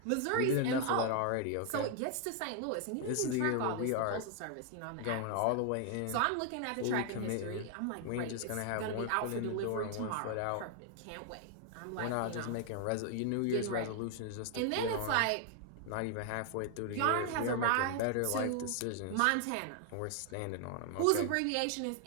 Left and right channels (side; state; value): both; different; correlation 0.00